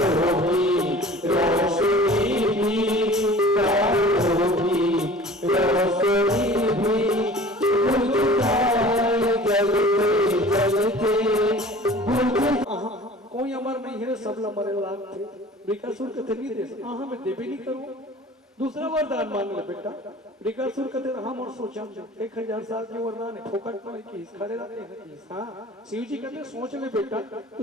की रोशनी भी, तारों की रोशनी भी बुझ जाए जलते जलते। कोई अमर नहीं है, सब मरे लाग थे। वृकासुर कहते नहीं दे सकता, हाँ मैं देवे नहीं करूँ। दूसरा वरदान मांग ले बेटा। वृकासुर कहते हम और सोचा 1000 साल के वरदान है, फोकट में की खड़े रहते हैं। हाँ, शिव जी कहते सोच ले बेटा,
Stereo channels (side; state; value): both; normal; correlation 0.44